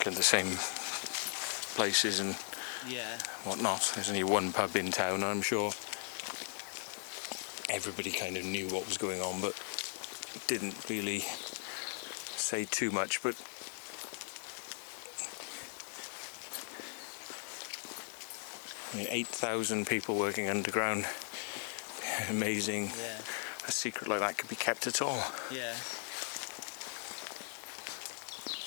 in the same places and Yeah. whatnot. There's only one pub in town, I'm sure. Everybody kind of knew what was going on, but didn't really say too much. But I mean, 8,000 people working underground. Amazing. Yeah. A secret like that could be kept at all. Yeah.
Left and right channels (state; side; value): silent; right; 53 dB below the other